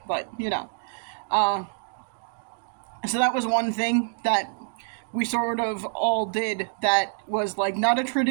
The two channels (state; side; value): silent; left; digital silence